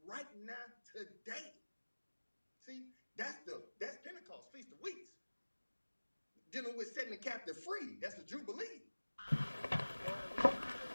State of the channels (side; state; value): both; inverted; correlation -1.00